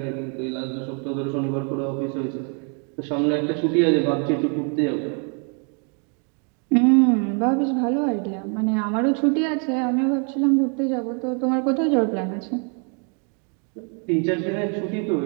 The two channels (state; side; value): quieter; left; 39.2 dB